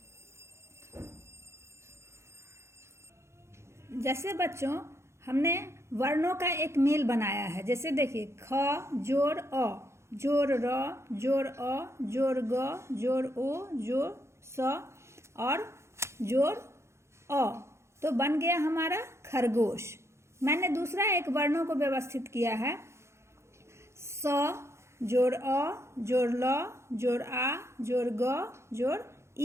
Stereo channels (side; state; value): left; late; 0.13 ms